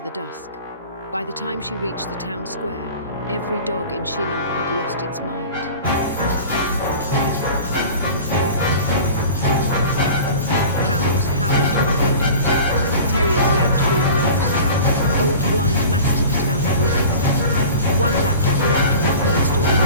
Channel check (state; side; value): inverted; both; correlation -0.39